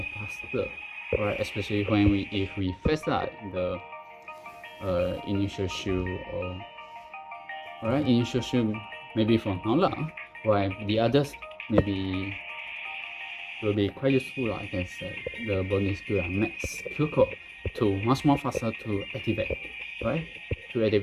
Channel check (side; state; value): both; identical; correlation 1.00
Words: faster, alright? Especially when if we face out the initial shield or alright, initial shield maybe for now lah, while the others maybe will be quite useful, I can say. The bonus skill are max Kyoko to much more faster to activate, right? To